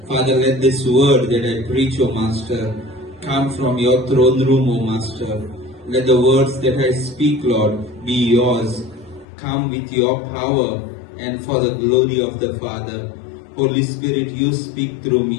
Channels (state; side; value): drops out; right; at 9.2 s